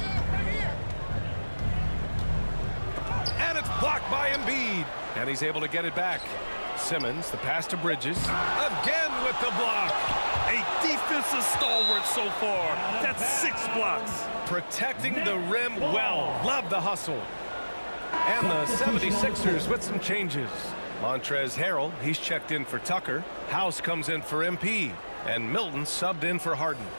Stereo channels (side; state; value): both; inverted; correlation -1.00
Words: And it's blocked by Embiid. And he's able to get it back. Simmons, the pass to Bridges. Again with the block. A defensive stalwart so far. That's 6 blocks. Protecting the rim well. Love the hustle. And the 76ers with some changes. Montrezl Harrell, he's checked in for Tucker. House comes in for MP. And Milton subbed in for Harden.